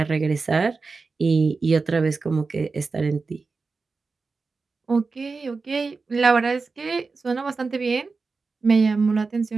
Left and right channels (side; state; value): left; quieter; 4.3 dB